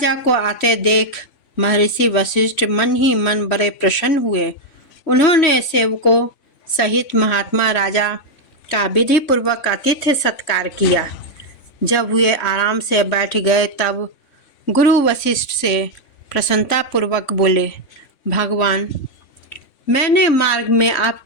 को आते देख महर्षि वशिष्ठ मन ही मन बड़े प्रसन्न हुए। उन्होंने सेवकों सहित महात्मा राजा का विधि पूर्वक आतिथ्य सत्कार किया। जब वे आराम से बैठ गए तब गुरु वशिष्ठ से प्रसन्नता पूर्वक बोले, भगवान, मैंने मार्ग में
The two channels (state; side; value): late; right; 3.5 ms